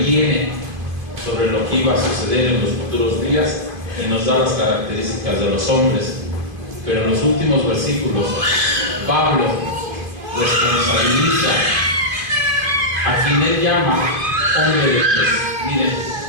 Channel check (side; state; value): left; late; 2.5 ms